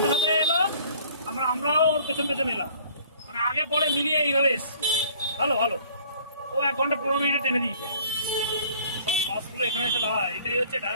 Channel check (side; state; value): both; inverted; correlation -0.54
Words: সাথে এলো, আমরাও ওর পেছন পেছন এলাম, মানে আগে পরে মিলিয়ে এইভাবে এসছি। ভালো ও 1 ঘন্টা 15 মিনিটে টেনে দিয়েছে। বাসগুলো এখানে এসে দাঁড়ায়, এটাই হচ্ছে